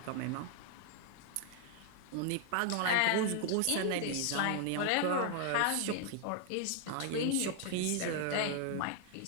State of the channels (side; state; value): both; different; correlation 0.00